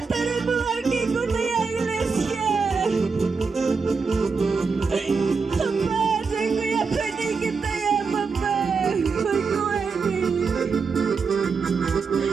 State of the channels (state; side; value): quieter; left; 5.0 dB